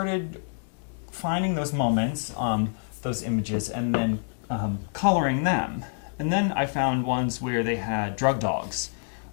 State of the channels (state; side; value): silent; right; digital silence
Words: finding those moments, those images, and then coloring them. And then I found ones where they had drug dogs